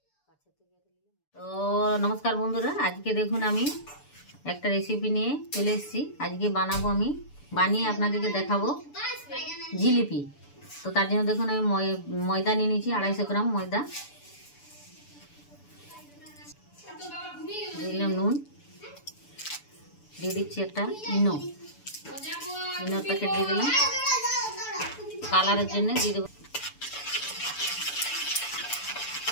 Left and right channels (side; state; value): right; late; 6.9 ms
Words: তো নমস্কার বন্ধুরা, আজকে দেখুন আমি একটা রেসিপি নিয়ে চলে এসেছি। আজকে বানাবো, আমি বানিয়ে আপনাদেরকে দেখাবো জিলিপি। তো তার জন্য দেখুন আমি ময়দা নিয়ে নিয়েছি, 250 গ্রাম ময়দা, দিলাম নুন, দিয়ে দিচ্ছি একটা ইনোর প্যাকেট দিয়ে দিলাম, কালারের জন্য দিয়ে দেবো।